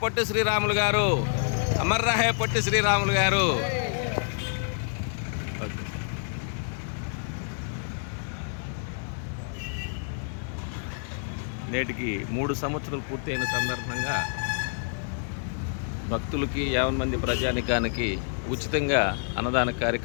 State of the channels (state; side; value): silent; right; digital silence